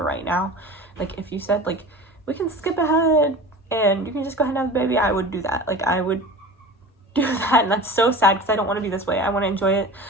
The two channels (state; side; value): normal; both; correlation 0.35